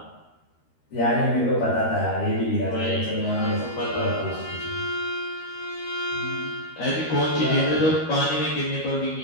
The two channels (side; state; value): right; late; 13 ms